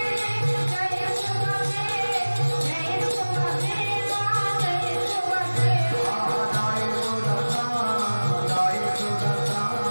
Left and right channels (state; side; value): inverted; both; correlation -1.00